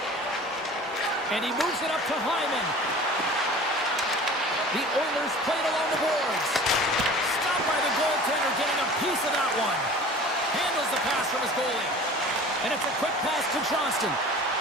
And he moves it up to Hyman. The Oilers play it along the boards. Stopped by the goaltender, getting a piece of that one. Handles the pass from his goalie. And it's a quick pass to Johnston.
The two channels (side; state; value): both; normal; correlation 0.42